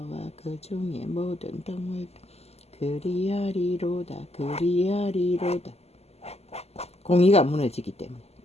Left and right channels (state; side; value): late; right; 0.30 ms